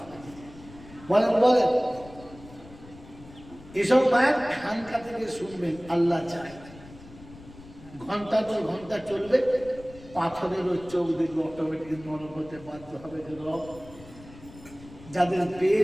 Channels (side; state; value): left; noise; rumble, 19 dB below the sound